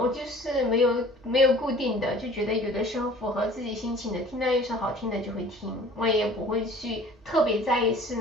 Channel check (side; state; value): both; normal; correlation 0.48